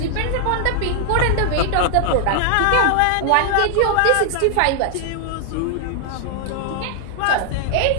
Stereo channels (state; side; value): different; both; correlation 0.00